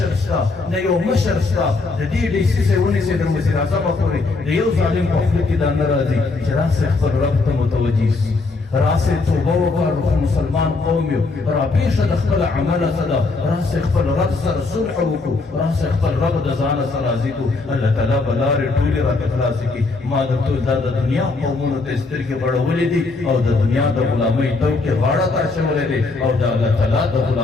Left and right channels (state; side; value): quieter; right; 3.7 dB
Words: شته نه یو مشر شته د دې ډیسیسۍ ونیسئ د وزیر اعظمه پورې د یو ظالم په خوله کې دا نه راځي چې راسئ خپل رب ته متوجه شي راسئ توبه وکړو مسلمان قوم یو راپېښه د خپل عمله څه ده راسئ خپل رب سره صلح وکړو راسئ خپل رب د ځانه سره راضي کړو الله تعالی به لارې ټولې راته خلاصې کړي ما درته دا د دنیا قومونو ته سترګې بړولې دي او د دنیا د غلامۍ توکې غاړه ته اچولې دي او د الله تعالی د